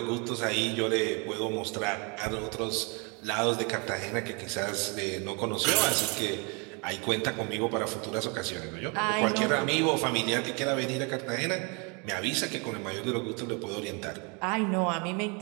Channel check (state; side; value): quieter; left; 32.4 dB